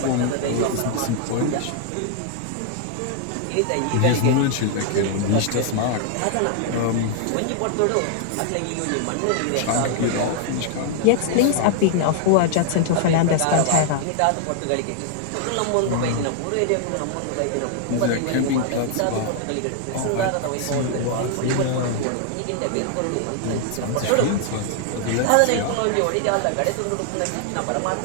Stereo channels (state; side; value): different; both; correlation 0.00